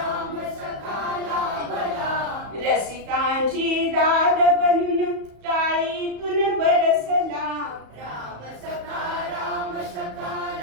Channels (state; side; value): late; left; 34 ms